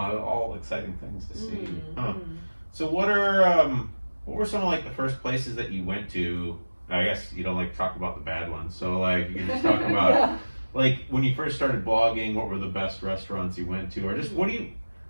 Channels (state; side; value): inverted; both; correlation -1.00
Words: exciting things to see. Mm, Huh. mm. So what were some of like the first places that you went to? I guess you don't like to talk about the bad ones. So like you can just talk about Yeah. like when you first started blogging, what were the best restaurants you went to, or just what do you?